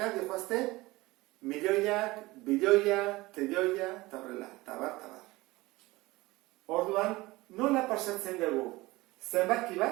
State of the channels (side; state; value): left; quieter; 20.4 dB